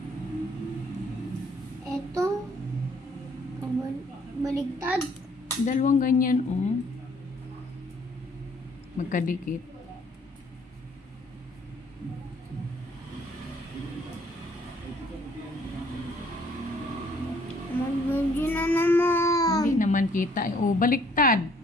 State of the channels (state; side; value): normal; both; correlation 0.62